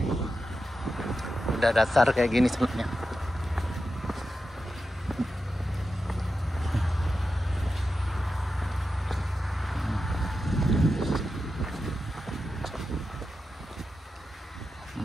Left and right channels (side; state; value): both; normal; correlation 0.90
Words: udah dasar kayak gini sebenarnya.